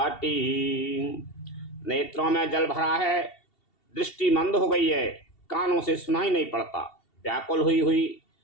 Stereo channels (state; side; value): late; right; 2.7 ms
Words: नेत्रों में जल भरा है, दृष्टि मंद हो गई है, कानों से सुनाई नहीं पड़ता, व्याकुल